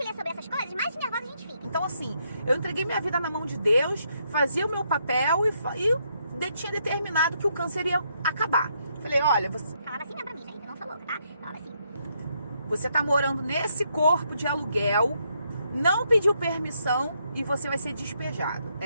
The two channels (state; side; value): inverted; both; correlation -0.76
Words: lê sobre essas coisas, mais nervosa a gente fica. Então, assim, eu entreguei minha vida na mão de Deus, fazia o meu papel e tinha determinado que o câncer ia acabar. Falei, olha, você... Falava assim mesmo pra mim, gente, eu não sou louca, tá? Falava assim. Você tá morando nesse corpo de aluguel, não pediu permissão e você vai ser despejado.